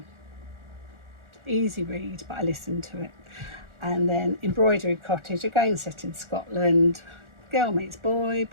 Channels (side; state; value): left; late; 1.4 ms